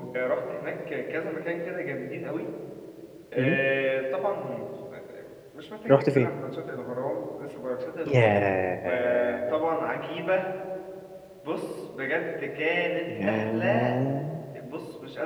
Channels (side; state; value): both; identical; correlation 1.00